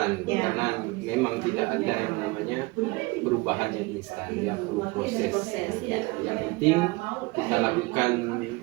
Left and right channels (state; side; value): quieter; left; 24.5 dB